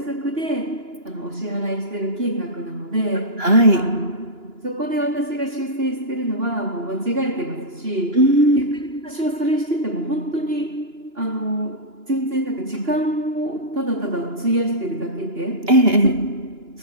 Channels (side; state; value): left; late; 2.9 ms